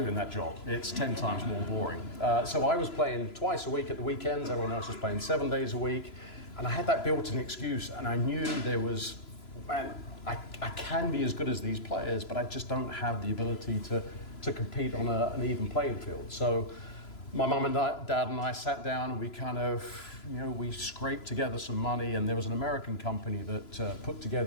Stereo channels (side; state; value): right; late; 3.0 ms